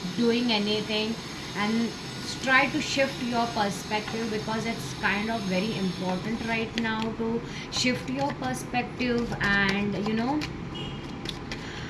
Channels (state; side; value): identical; both; correlation 1.00